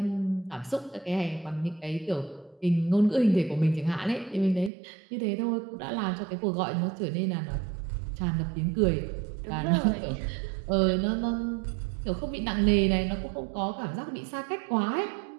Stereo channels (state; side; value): drops out; left; at 4.7 s